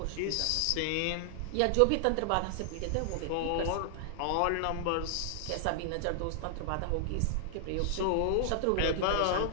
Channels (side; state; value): both; different; correlation 0.00